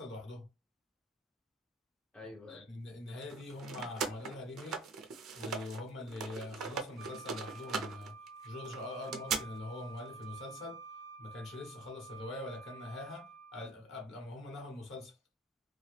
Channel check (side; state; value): both; normal; correlation 0.46